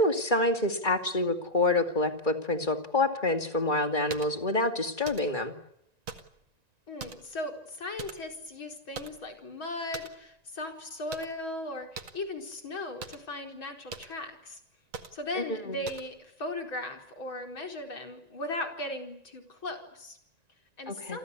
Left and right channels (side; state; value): left; late; 1.9 ms